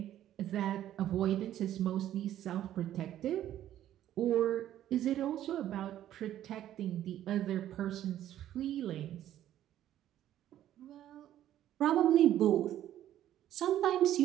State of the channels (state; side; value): quieter; left; 12.1 dB